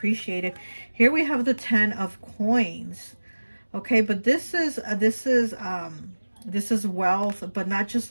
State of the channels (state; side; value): inverted; both; correlation -1.00